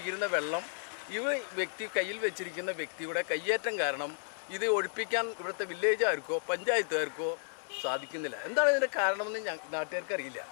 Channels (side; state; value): right; silent; digital silence